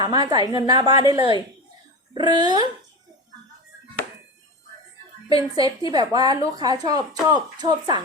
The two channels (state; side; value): normal; both; correlation 0.25